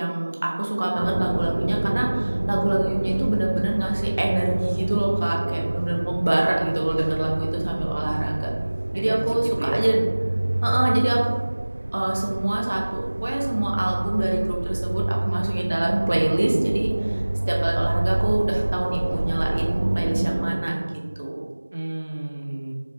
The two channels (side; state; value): both; inverted; correlation -1.00